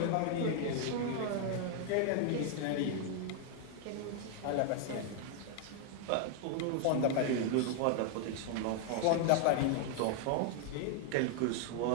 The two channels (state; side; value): different; both; correlation 0.00